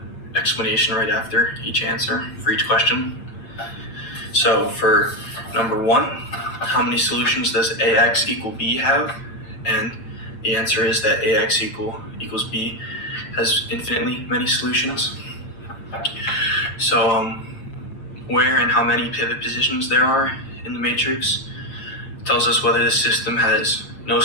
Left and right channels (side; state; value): right; late; 6.6 ms